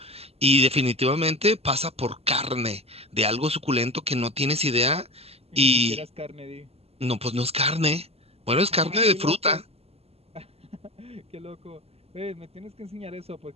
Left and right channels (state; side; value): late; left; 0.29 ms